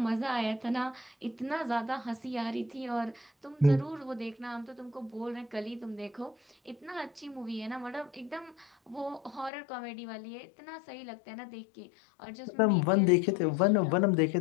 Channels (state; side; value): drops out; right; at 9.5 s